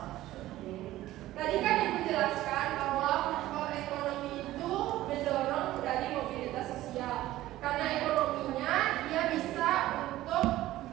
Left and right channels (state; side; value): quieter; left; 15.4 dB